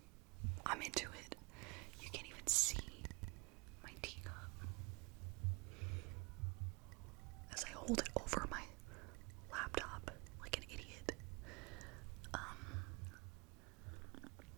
I'm into it. You can't even see my teacup as I hold it over my laptop like an idiot.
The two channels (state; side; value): quieter; left; 30.0 dB